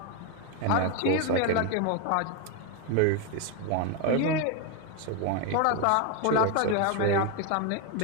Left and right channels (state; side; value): different; both; correlation 0.01